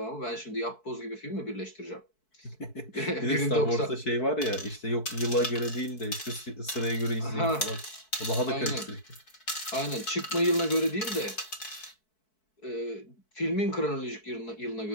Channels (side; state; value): right; late; 4.6 ms